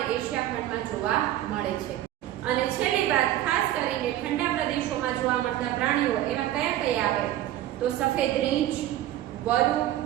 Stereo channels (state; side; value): quieter; left; 13.4 dB